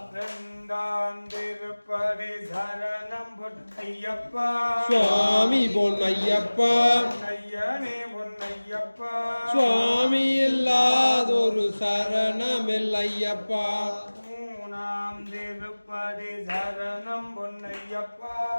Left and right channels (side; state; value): both; inverted; correlation -1.00